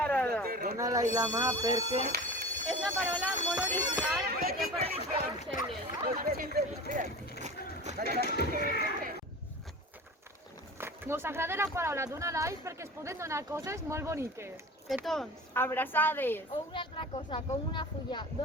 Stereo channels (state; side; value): normal; both; correlation 0.35